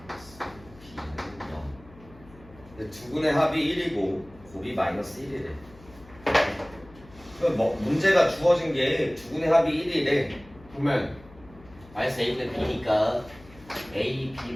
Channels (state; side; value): noise; left; hum, 22 dB below the sound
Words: b는 0. 근데 두 군의 합이 1이고 곱이 마이너스 1이래. 그럼 뭐 문제가 주어진 게 두 군의 합이 1이래. 그러면 마이너스 a분의 b니까 a